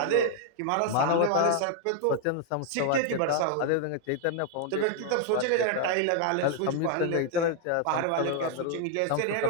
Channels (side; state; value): both; different; correlation 0.00